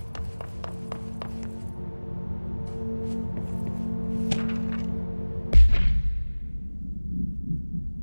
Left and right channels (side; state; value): both; inverted; correlation -1.00